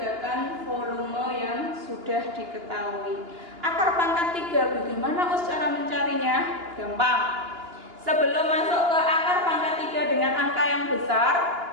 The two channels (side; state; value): left; late; 2.9 ms